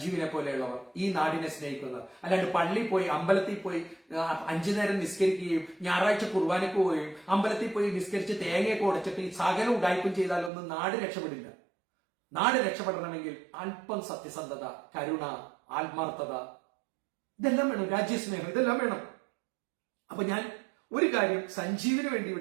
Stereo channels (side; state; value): left; drops out; at 10.5 s